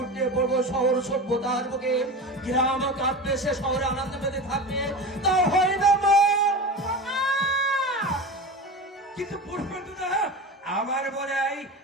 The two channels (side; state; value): both; normal; correlation 0.28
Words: পড়বো শহর সভ্যতার বুকে গ্রাম কাঁপবে সে শহরে আনন্দ পেতে থাকবে তা হয় না মা কিন্তু পুষ্পেন্দুদা আমার মনে হয়